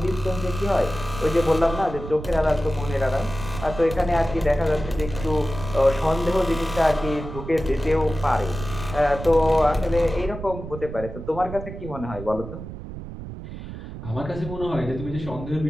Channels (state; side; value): noise; right; rumble, 10 dB below the sound